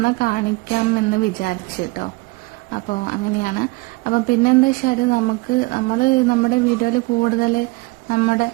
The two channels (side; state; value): left; quieter; 24.6 dB